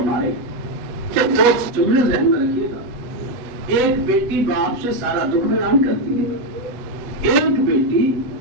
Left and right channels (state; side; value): late; left; 8.4 ms